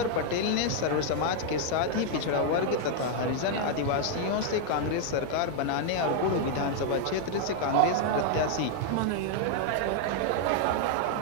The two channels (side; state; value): both; different; correlation 0.00